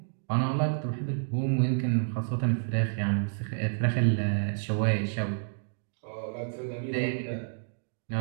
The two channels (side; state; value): left; silent; digital silence